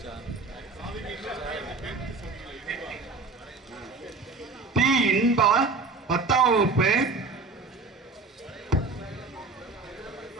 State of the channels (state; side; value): quieter; left; 3.9 dB